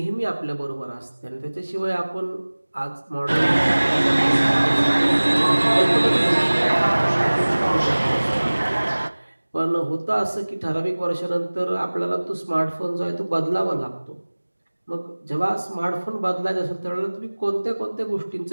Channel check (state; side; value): inverted; both; correlation -1.00